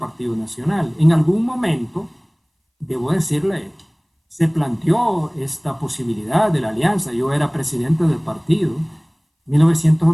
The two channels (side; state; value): both; identical; correlation 1.00